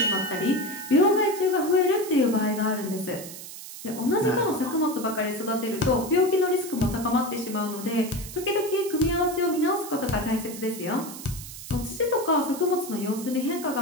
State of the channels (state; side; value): noise; right; hiss, 12 dB below the sound